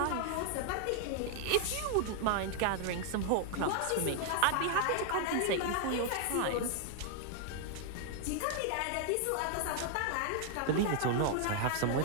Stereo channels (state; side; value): different; both; correlation 0.00